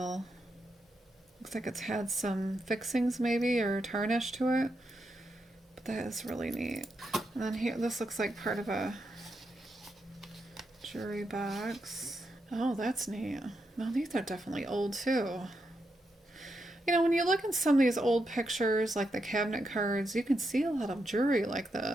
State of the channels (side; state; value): both; normal; correlation 0.83